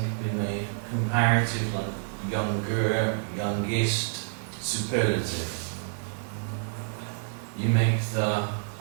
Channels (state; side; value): silent; left; digital silence